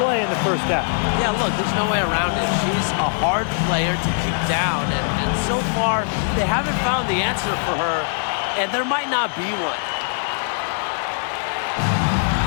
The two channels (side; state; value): right; silent; digital silence